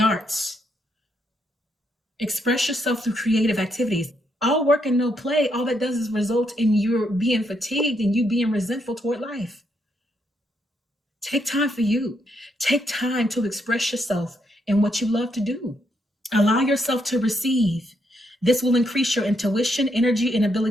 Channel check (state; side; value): normal; both; correlation 0.77